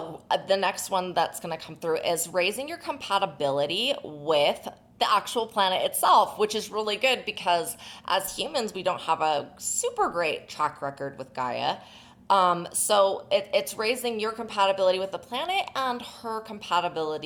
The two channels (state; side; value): identical; both; correlation 1.00